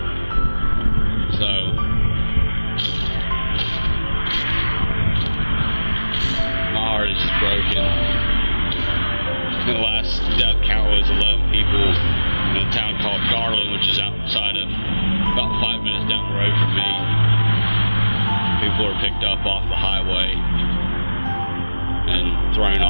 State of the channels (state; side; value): inverted; both; correlation -0.99